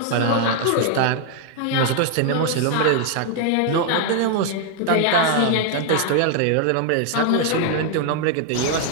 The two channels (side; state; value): both; different; correlation 0.00